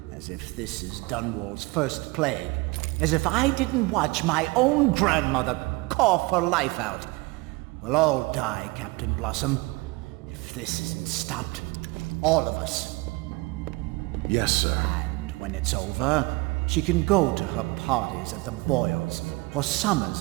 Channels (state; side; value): quieter; left; 24.3 dB